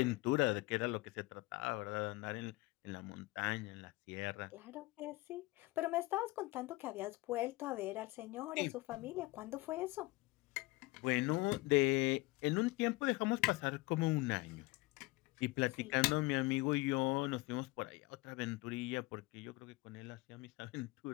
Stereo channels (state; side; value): quieter; right; 21.9 dB